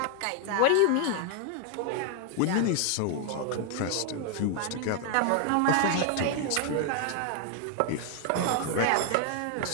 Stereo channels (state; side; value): different; both; correlation 0.00